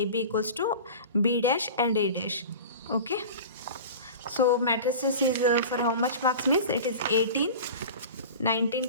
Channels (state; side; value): inverted; both; correlation -0.35